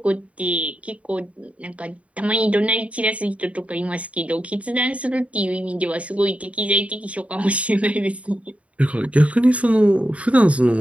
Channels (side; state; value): left; late; 0.065 ms